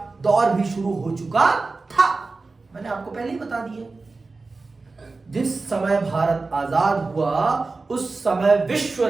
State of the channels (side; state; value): left; quieter; 3.8 dB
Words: दौर भी शुरू हो चुका था। मैंने आपको पहले ही बता दिया, जिस समय भारत आजाद हुआ उस समय विश्व